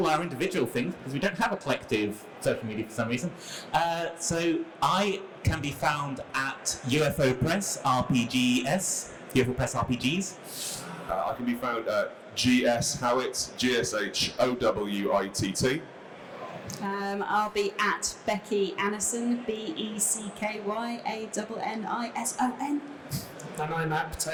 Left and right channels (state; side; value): identical; both; correlation 1.00